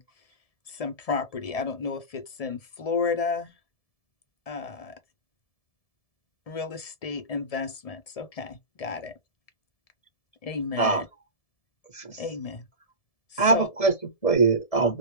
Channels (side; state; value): right; late; 1.7 ms